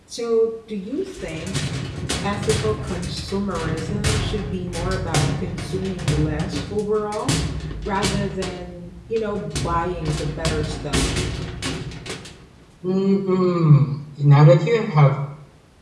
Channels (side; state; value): both; identical; correlation 1.00